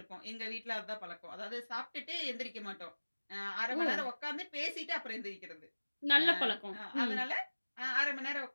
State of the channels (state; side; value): inverted; both; correlation -1.00